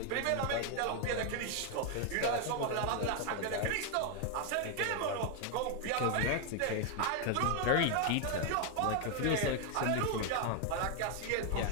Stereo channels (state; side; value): different; both; correlation 0.01